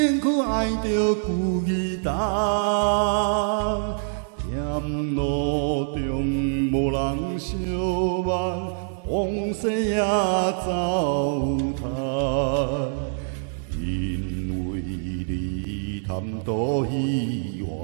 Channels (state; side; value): silent; left; digital silence